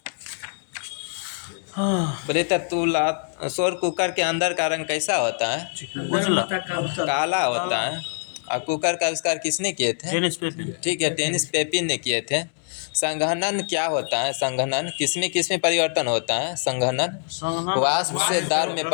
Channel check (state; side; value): silent; right; 62 dB below the other